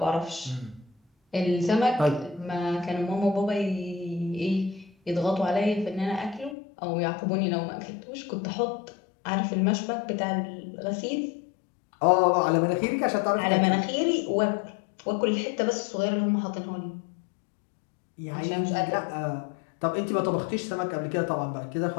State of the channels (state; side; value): drops out; right; at 6.6 s